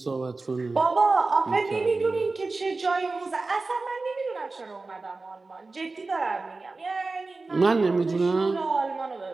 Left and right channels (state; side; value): quieter; left; 3.6 dB